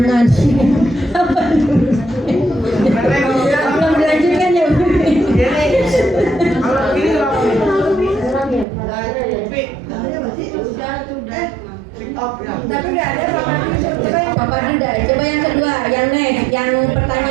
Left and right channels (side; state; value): left; drops out; at 8.7 s